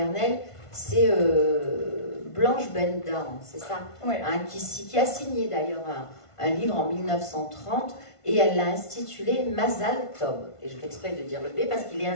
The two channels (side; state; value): right; late; 1.5 ms